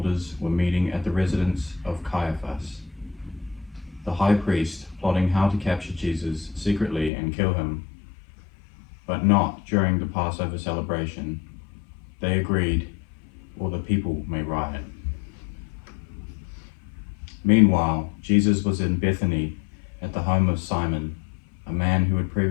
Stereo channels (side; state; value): right; drops out; at 7.1 s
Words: were meeting at the residence of Caiaphas, the high priest, plotting how to capture Jesus secretly and kill him, but not during the Passover celebration. They agreed, or the people may riot. Meanwhile, Jesus was in Bethany at the home of Simon, a man who had